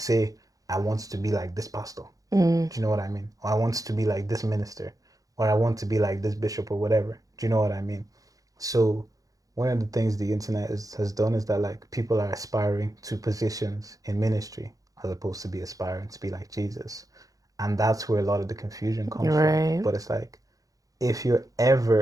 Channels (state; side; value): late; left; 0.17 ms